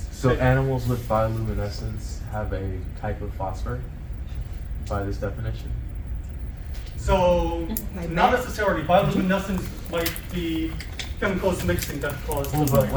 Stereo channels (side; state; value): both; identical; correlation 1.00